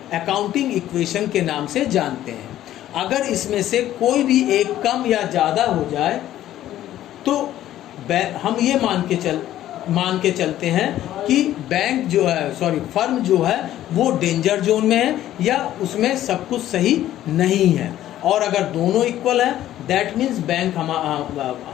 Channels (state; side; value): quieter; right; 13.0 dB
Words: अकाउंटिंग इक्वेशन के नाम से जानते हैं। अगर इसमें से कोई भी एक कम या ज़्यादा हो जाए तो हम ये मान के चलते हैं कि बैंक जो है, फर्म जो है वो डेंजर जोन में है या उसमें सब कुछ सही नहीं है। और अगर दोनों इक्वल है दैट मीन्स बैंक